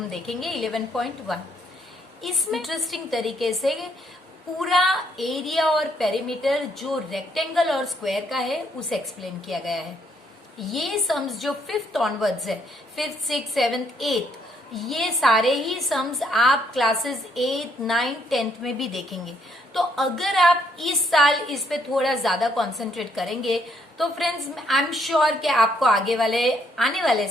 देखेंगे 11.1। इसमें इंटरेस्टिंग तरीके से पूरा एरिया और पेरीमीटर जो रेक्टेंगल और स्क्वायर का है उसे एक्सप्लेन किया गया है। ये सम्स जो 5th ऑनवर्ड्स है, 5th, 6th, 7th, 8th, ये सारे ही सम्स आप क्लासेस 8, 9, 10th में भी देखेंगे। तो अगर आप इस साल इस पे थोड़ा ज्यादा कंसंट्रेट करेंगे तो फ्रेंड्स आई एम श्योर कि आपको आने वाले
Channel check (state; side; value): normal; both; correlation 0.70